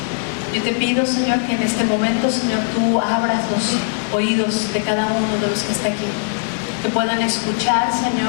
Yo te pido, Señor, que en este momento, Señor, tú abras los oídos de cada uno de los que está aquí. Que puedan escuchar,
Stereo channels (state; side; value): silent; right; 65 dB below the other